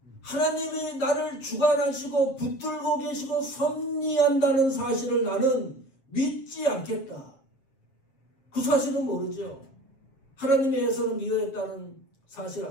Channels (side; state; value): right; late; 7.4 ms